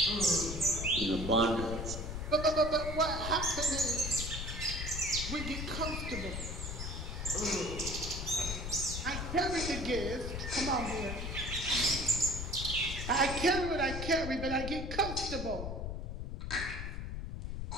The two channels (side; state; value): left; noise; rumble, 5 dB below the sound